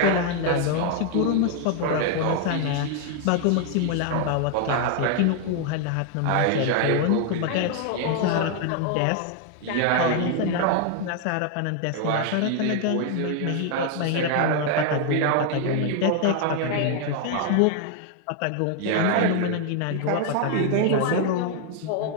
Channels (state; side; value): different; both; correlation 0.00